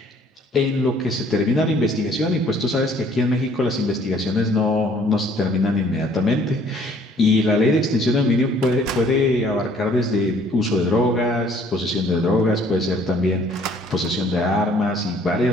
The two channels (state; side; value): normal; both; correlation 0.59